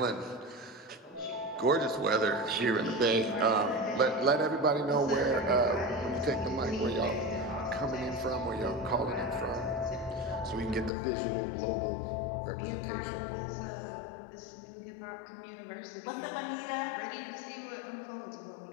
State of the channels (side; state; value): right; drops out; at 10.9 s